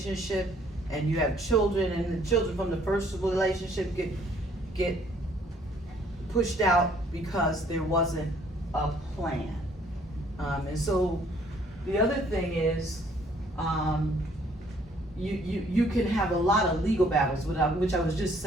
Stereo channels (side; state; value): both; normal; correlation 0.62